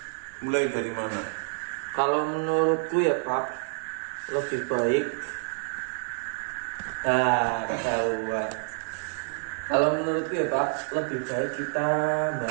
mulai dari mana? Kalau menurutku ya Pak, lebih baik ketahuan. Kalau menurutku ya Pak, lebih baik kita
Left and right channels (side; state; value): left; silent; digital silence